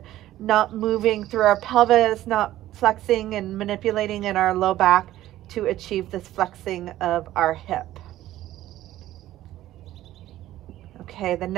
not moving through our pelvis, not flexing and manipulating in our low back to achieve this flexing of our hip. Okay, the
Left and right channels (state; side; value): quieter; left; 14.3 dB